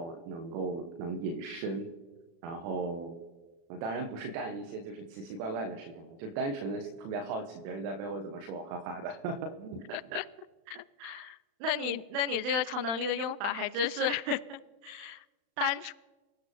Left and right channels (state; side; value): late; left; 35 ms